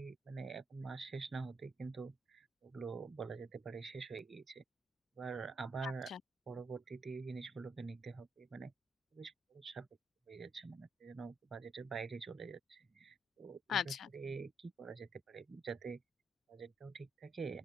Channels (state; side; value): normal; both; correlation 0.77